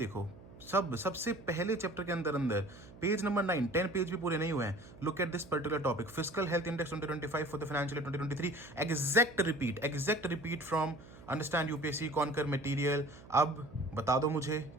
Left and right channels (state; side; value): noise; right; hum, 19 dB below the sound